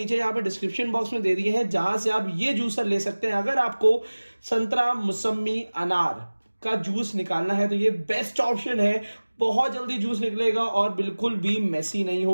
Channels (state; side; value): inverted; both; correlation -1.00